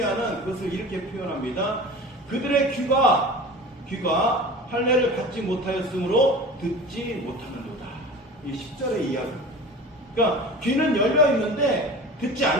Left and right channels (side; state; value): both; normal; correlation 0.36